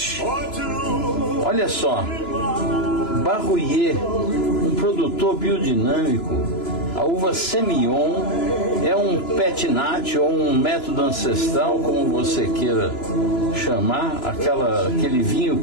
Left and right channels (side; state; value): right; late; 2.9 ms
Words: Olha só, Barruyer, um produtor biodinâmico. A uva Semillon é um petinat ou um método ancestral, como você queira chamar, aquele vinho